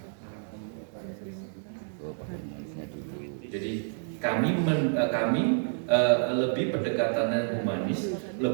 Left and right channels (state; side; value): silent; left; 58 dB below the other